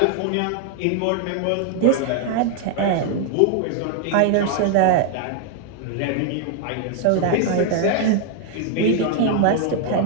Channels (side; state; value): both; different; correlation 0.00